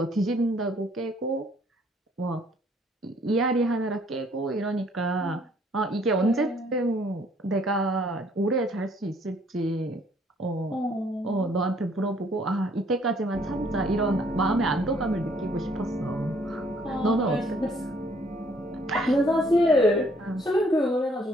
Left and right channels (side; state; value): both; normal; correlation 0.63